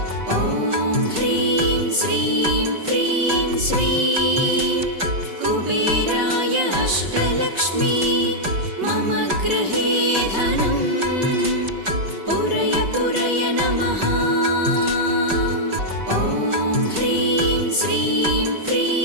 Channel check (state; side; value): late; left; 5.2 ms